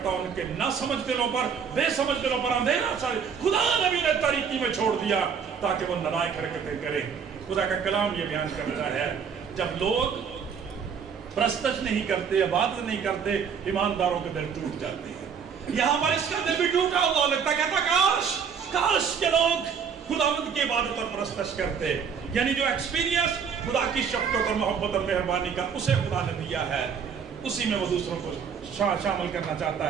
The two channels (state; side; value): quieter; left; 6.8 dB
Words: ان کے نہ سمجھ دلوں پر، بے سمجھ دلوں پر اندھیرا چھا گیا، خدا نبی نے تاریکی میں چھوڑ دیا تاکہ وہ نالائق حرکتیں کریں۔ خدا کا کلام یہ بیان کرتا ہے جب لوگ پرستش نہیں کرتے، عبادت نہیں کرتے، ایمانداروں کے دل ٹوٹ جاتے ہیں۔ یہاں پر اس کا دل بھی ٹوٹا ہوا لگتا، کہتا کاش کے لوگ خداوند کی عبادت اور پرستش کرتے، یعنی جو ایکسپیرینس خدا کی شفقت اور محبت اور مہربانی کا اسے خدا نے دیا ہے، اسی میں وہ دوسروں کو شامل کرنا